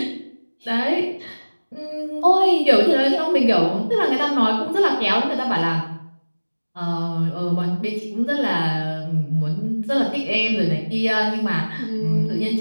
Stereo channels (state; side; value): inverted; both; correlation -1.00